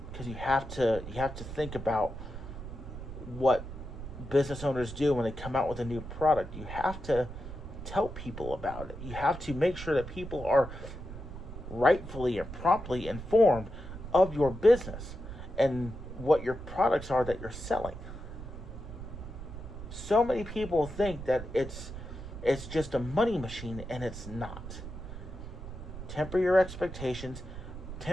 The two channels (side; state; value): right; noise; rumble, 10 dB below the sound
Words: Because you have to think about what business owners do when they come out with a new product. You have to tell people about it. You have to make sure that people are rightfully and promptly informed of your business and what your products are that you're selling. So many people think that it's just a money machine, and it's not. Temper your expectations,